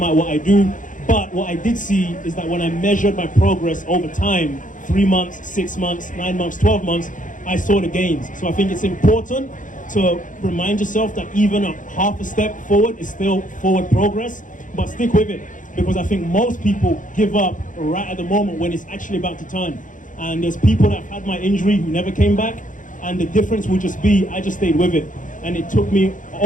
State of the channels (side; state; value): right; late; 0.38 ms